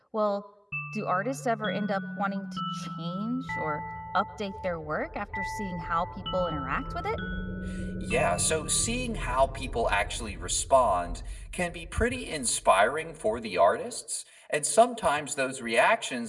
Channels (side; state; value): both; identical; correlation 1.00